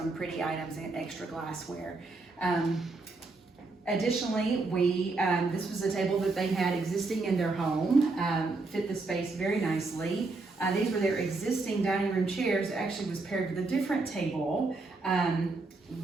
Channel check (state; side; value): quieter; left; 3.5 dB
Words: pretty items and extra glassware. Additionally, this was a table that they had existing in their home, fit the space very nicely. These were their existing dining room chairs. It actually was paired with a different table.